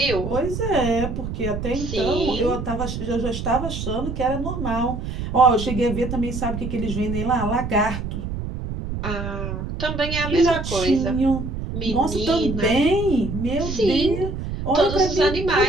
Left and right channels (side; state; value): right; noise; rumble, 5 dB below the sound